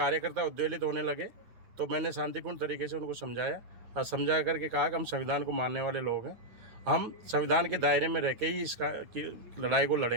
उद्वेलित होने लगे तो मैंने शांतिपूर्ण तरीके से उनको समझाया और समझा करके कहा कि हम संविधान को मानने वाले लोग हैं, हम संविधान के दायरे में रह के ही इसका की लड़ाई को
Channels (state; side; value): late; left; 9.3 ms